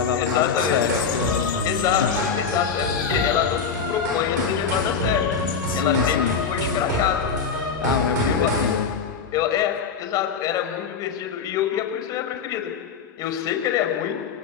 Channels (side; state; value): right; quieter; 6.1 dB